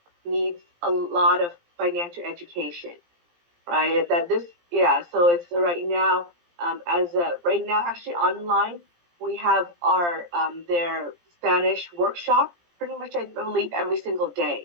needs a lot of financial education, right? That this, yeah. So it's right now, right now, actually online, we have our their Spanish workshop pretty much, I believe, every single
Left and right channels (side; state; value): left; late; 17 ms